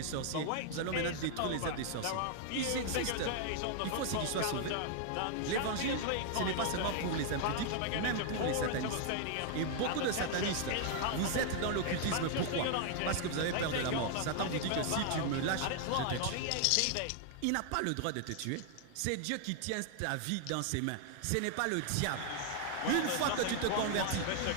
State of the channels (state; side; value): different; both; correlation 0.00